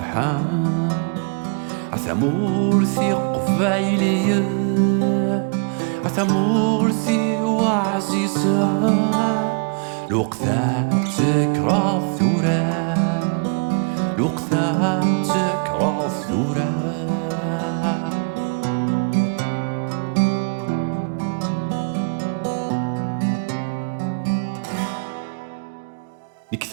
عثمورثي قبيلي عثمورثي وعزيزة الوقتا تكره الثورة الوقتا تكره الثورة نك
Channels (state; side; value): quieter; left; 39.0 dB